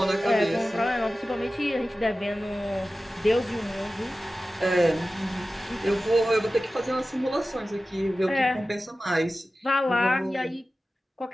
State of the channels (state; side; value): normal; both; correlation 0.95